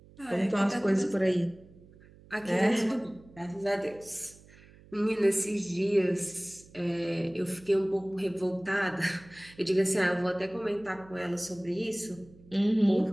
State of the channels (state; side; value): noise; right; hum, 24 dB below the sound